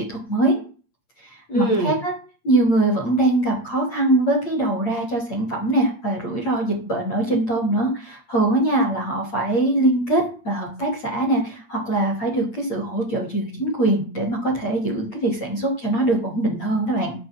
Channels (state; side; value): late; right; 8.6 ms